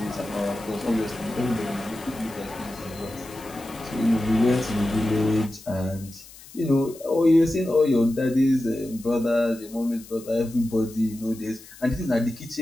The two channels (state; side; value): noise; left; hiss, 20 dB below the sound